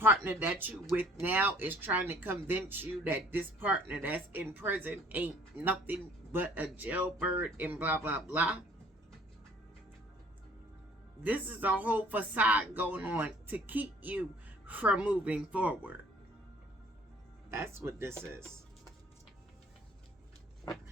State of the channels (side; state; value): both; normal; correlation 0.55